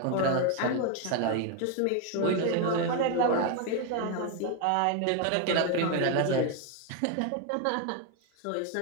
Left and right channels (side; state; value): both; different; correlation 0.01